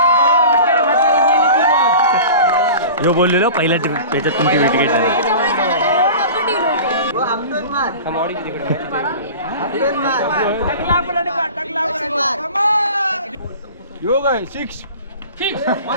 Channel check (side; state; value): both; inverted; correlation -0.38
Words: जो बोललेलो पहिल्या त्याच्यात तुमची विकेट झाली. योग आहे 6